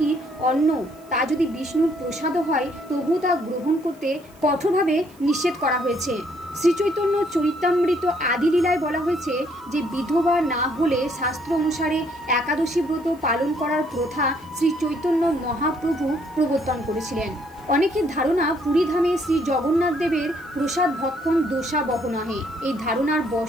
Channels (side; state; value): right; noise; hiss, 28 dB below the sound